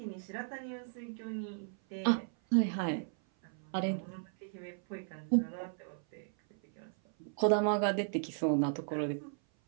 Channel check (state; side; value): silent; left; 54 dB below the other